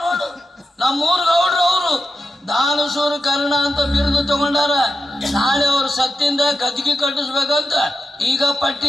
ನೋಡು, ನಮ್ಮೂರ್ ಗೌಡ್ರು. ಅವರು ದಾನಸೂರು ಕರ್ಣ ಅಂತ ಬಿರುದು ತಗೊಂಡಾರ. ನಾಳೆ ಅವ್ರ ಸತ್ತಿಂದ ಗದ್ದಿಗೆ ಕಟ್ಟಿಸ್ಬೇಕಂತ ಈಗ ಪಟ್ಟಿ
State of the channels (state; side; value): normal; both; correlation 0.89